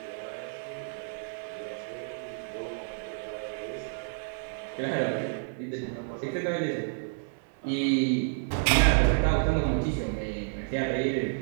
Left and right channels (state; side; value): silent; left; 58 dB below the other